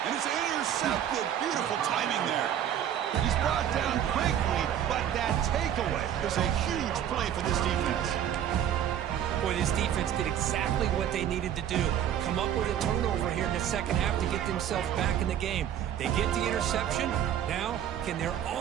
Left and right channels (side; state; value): left; quieter; 10.1 dB